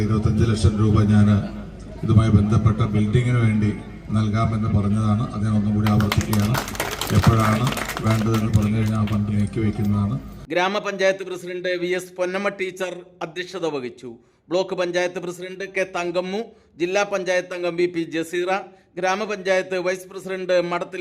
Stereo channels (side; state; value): both; identical; correlation 1.00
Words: 25 ലക്ഷം രൂപ ഞാൻ ഇതുമായി ബന്ധപ്പെട്ട ബിൽഡിങ്ങിന് വേണ്ടി നൽകാമെന്ന് പറഞ്ഞതാണ്. അതിനൊന്നും കൂടി ആവർത്തിക്കുകയാണ്. എപ്പോഴാണ് വേണ്ടതെന്ന് പറഞ്ഞു കഴിഞ്ഞാൽ ആ ഫണ്ട് നീക്കി വയ്ക്കുന്നതാണ്. ഗ്രാമപഞ്ചായത്ത് പ്രസിഡന്റ് VS പൊന്നമ്മ ടീച്ചർ അധ്യക്ഷത വഹിച്ചു. Block panchayat president K Thankammu, ജില്ലാ പഞ്ചായത്ത് അംഗം BP ജസീറ, ഗ്രാമപഞ്ചായത്ത് vice president